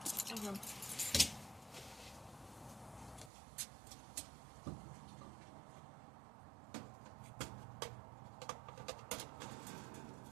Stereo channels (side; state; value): left; drops out; at 3.3 s